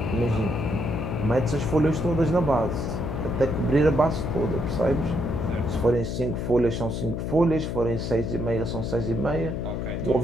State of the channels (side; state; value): left; noise; hum, 3 dB below the sound